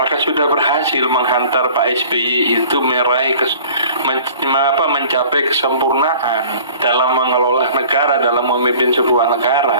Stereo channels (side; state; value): both; inverted; correlation -0.47